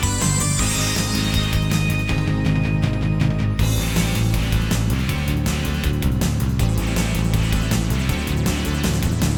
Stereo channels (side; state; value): both; identical; correlation 1.00